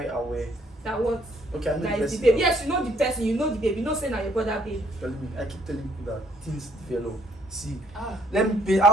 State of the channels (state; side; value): normal; both; correlation 0.65